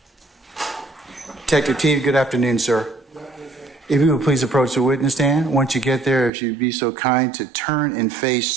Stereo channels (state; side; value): drops out; left; at 6.3 s